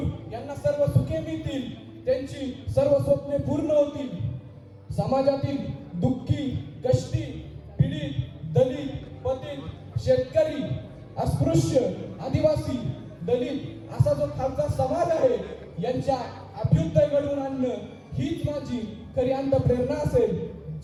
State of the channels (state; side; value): identical; both; correlation 1.00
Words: यांना सर्व सुखे मिळतील, त्यांची सर्व स्वप्ने पूर्ण होतील। समाजातील दुःखी, कष्टी, पीडित, दलित, पतित, शेतकरी, अस्पृश्य, आदिवासी, दलित असा जो खालचा समाज आहे, यांच्या अभ्युदय घडवून आणणं हीच माझी खरी अंतःप्रेरणा असेल।